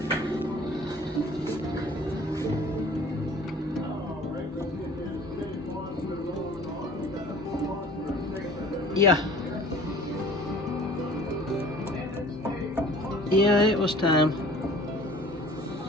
Yeah. Yeah, it was time.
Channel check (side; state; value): both; normal; correlation 0.48